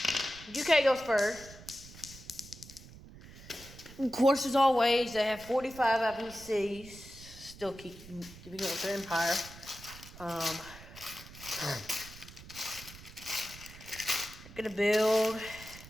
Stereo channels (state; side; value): noise; right; rumble, 17 dB below the sound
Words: UK goes first. Of course, as always, they have 45 IPCs, still keeping up with their empire. They're gonna build